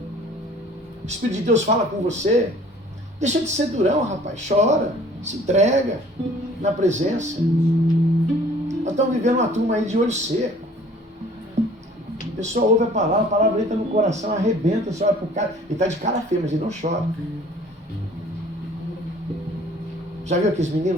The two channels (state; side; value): normal; both; correlation 0.52